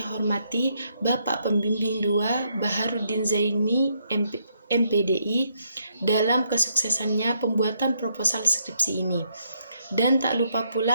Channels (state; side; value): inverted; both; correlation -0.74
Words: hormati Bapak Pembimbing 2 Baharudin Zaini MPDI dalam kesuksesannya pembuatan proposal skripsi ini. Dan tak lupa